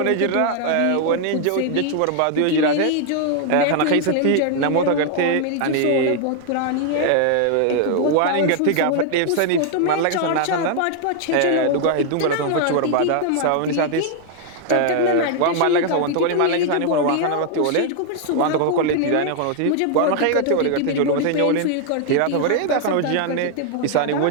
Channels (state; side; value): different; both; correlation 0.00